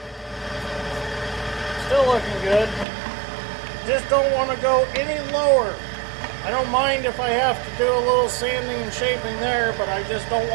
Still looking good. Just don't want to go any lower. I don't mind if I have to do a little sanding and shaping there, but I just don't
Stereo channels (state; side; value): drops out; left; at 2.9 s